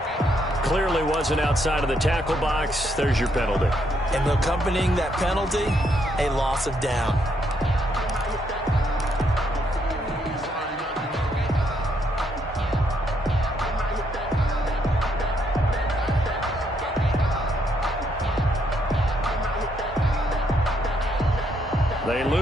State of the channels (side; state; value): both; normal; correlation 0.74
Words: Clearly wasn't outside of the tackle box. There's your penalty. And accompanying that penalty, a loss of down. They